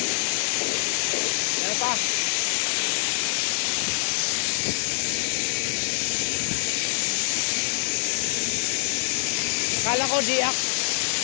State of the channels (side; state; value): right; silent; digital silence